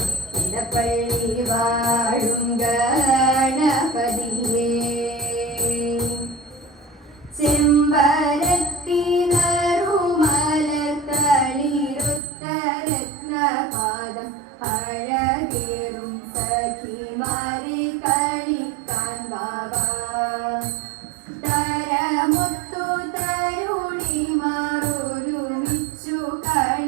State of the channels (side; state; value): left; drops out; at 12.2 s